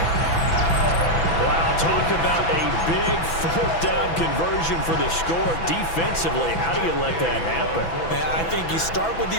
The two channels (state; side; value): late; right; 6.0 ms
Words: Wow, talk about a big 4th down conversion for the score. Defensively, how do you let that happen? I think you start with